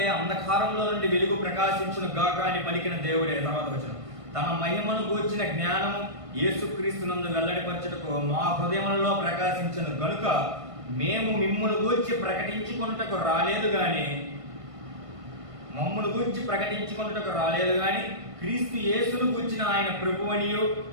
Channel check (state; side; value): late; left; 1.5 ms